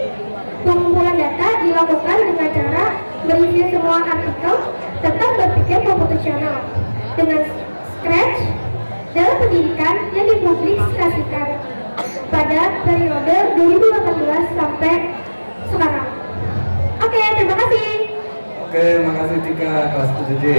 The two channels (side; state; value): both; inverted; correlation -1.00